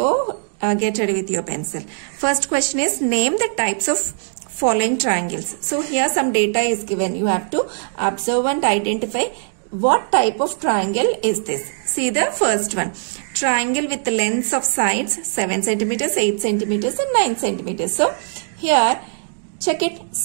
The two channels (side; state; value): left; silent; digital silence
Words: get ready with your pencil. First question is, name the types of following triangles. So here some data is given. You have to observe and identify what type of triangle is this. See the first one. Triangle with the lengths of sides 7 centimeters, 8 centimeters and 9 centimeters. So here check it,